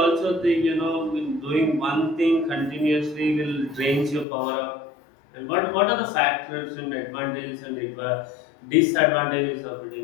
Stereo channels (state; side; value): drops out; right; at 4.2 s